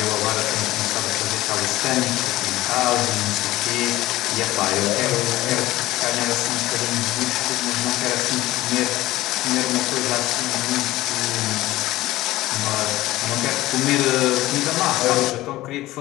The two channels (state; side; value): quieter; right; 17.0 dB